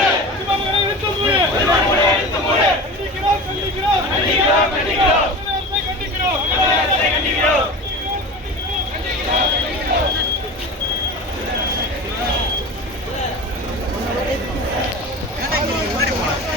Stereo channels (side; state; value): both; normal; correlation 0.31